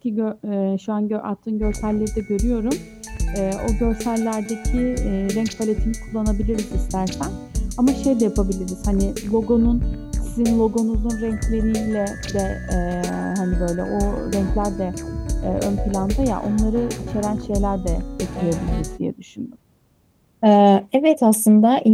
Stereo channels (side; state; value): both; identical; correlation 1.00